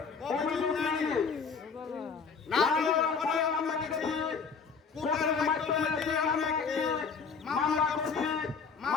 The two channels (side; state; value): right; quieter; 5.6 dB